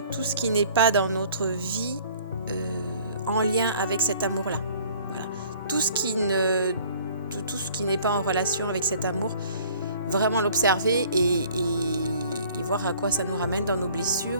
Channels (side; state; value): both; inverted; correlation -0.53